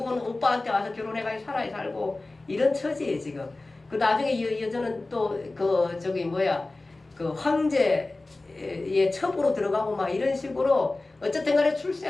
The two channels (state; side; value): quieter; right; 3.1 dB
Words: 오빠한테 와서 결혼해가지고 살고 이런 처지예요, 지금. 나중에 이 여자는 또 황제 예, 첩으로 들어가고 막 이런 식으로 어쨌든 간에